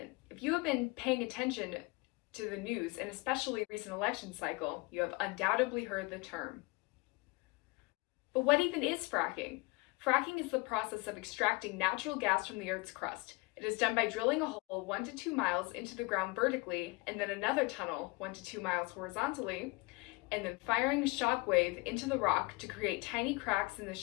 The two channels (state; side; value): quieter; right; 26.0 dB